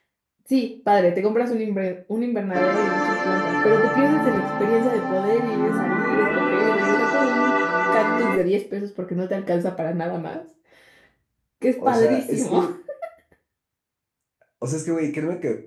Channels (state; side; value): identical; both; correlation 1.00